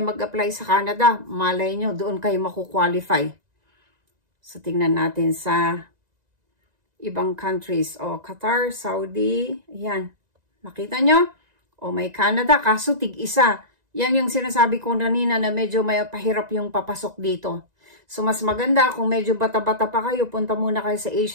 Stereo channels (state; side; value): late; left; 2.0 ms